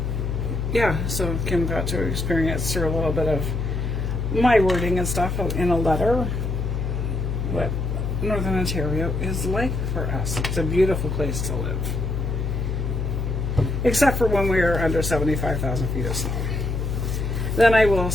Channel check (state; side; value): noise; left; hum, 1 dB below the sound